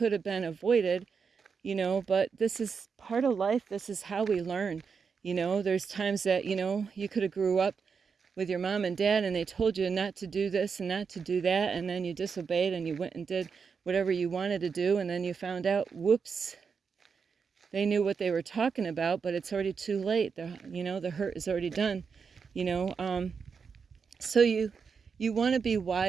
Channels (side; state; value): left; quieter; 5.8 dB